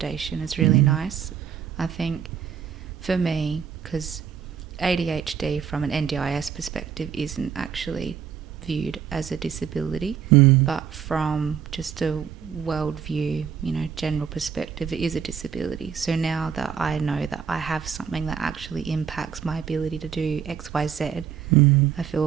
is really nice. I think for me, because ADHD from an NDIS perspective isn't actually viewed as a disability, but from just a world view, general perspective, it is a disability. So now that I know that I have something that actually impacts my ability to do X, Y, Z, I feel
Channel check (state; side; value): quieter; left; 7.9 dB